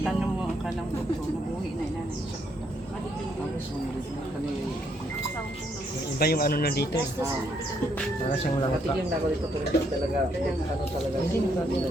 mo ang kanang doktor nabuhi na inanay siya. Iba yung ano na dito eh. Para siyang lang. Patigyan na ako dito talaga. Ano talaga.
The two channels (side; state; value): both; normal; correlation 0.73